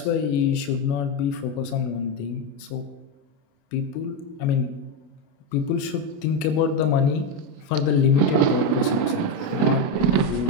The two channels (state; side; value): late; right; 28 ms